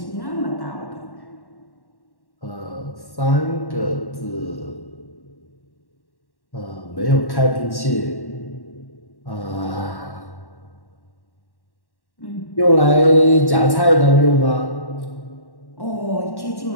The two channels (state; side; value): late; right; 1.1 ms